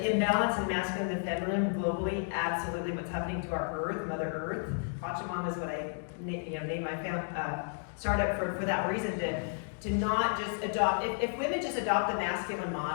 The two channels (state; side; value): silent; right; digital silence